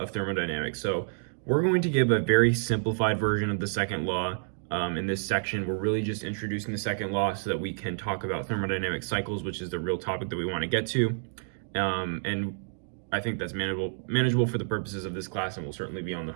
thermodynamics. So we're going to give a very simplified version of the second law. In this section, we're really just introducing the second law so that we can talk about thermodynamic cycles, which is the real topic that we want to get to. And I think that's manageable for the purposes of this class, and will certainly be on the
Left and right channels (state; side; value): silent; left; digital silence